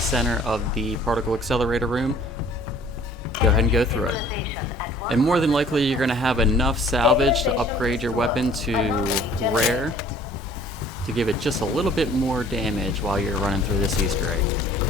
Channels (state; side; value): normal; both; correlation 0.53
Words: center of the particle accelerator room. Go ahead and go through it. And more than likely you're going to have enough salvage to upgrade your weapon to rare to give it just a little bit more damage while you're running through this Easter egg.